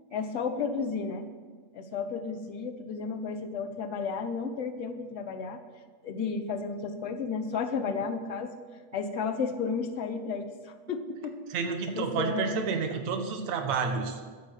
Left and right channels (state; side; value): late; left; 8.3 ms